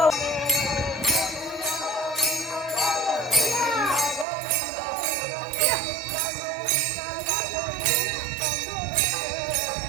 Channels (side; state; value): left; drops out; at 4.2 s